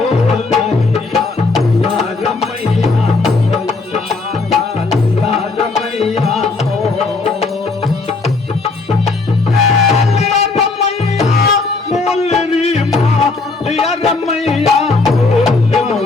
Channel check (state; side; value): quieter; right; 3.8 dB